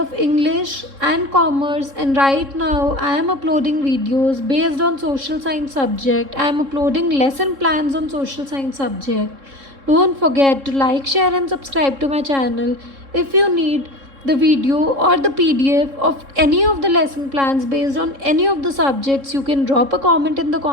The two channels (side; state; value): left; late; 3.7 ms